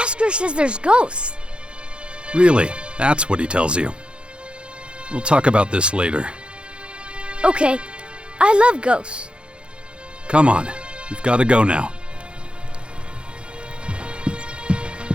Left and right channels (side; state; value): left; late; 0.056 ms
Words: says there's ghosts. Really? That's what he tells you. We'll talk about this later. Okay, I love ghosts. Come on. We've got to go now.